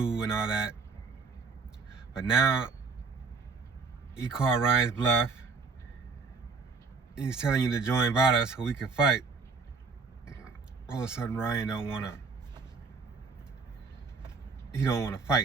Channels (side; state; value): left; quieter; 4.7 dB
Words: and all that. But now he called Ryan's bluff. He's telling you to join Vada so we can fight. All of a sudden Ryan don't want to. He don't want to